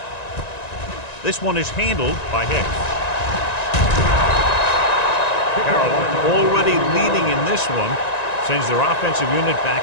This one is handled by Hicks. Carolina already leading in this one, sends their offensive unit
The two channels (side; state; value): right; late; 1.9 ms